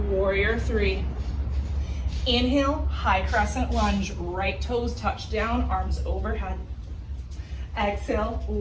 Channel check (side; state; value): both; identical; correlation 1.00